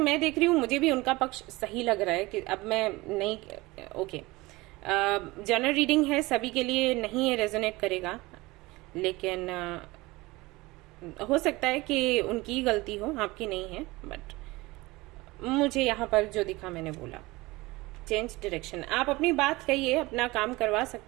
देख रही हूँ मुझे भी उनका पक्ष सही लग रहा है कि अब मैं नहीं, ओके, जनरल रीडिंग है, सभी के लिए नहीं ये रेजोनेट करेगा, लेकिन हो सकता है कि उनकी गलती हो, आपकी नहीं है। बट मुझे यहाँ पर जो दिखा मैंने बोला, चेंज डायरेक्शन। आप अपनी बात कहिए, अपना काम करवा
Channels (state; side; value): quieter; left; 21.5 dB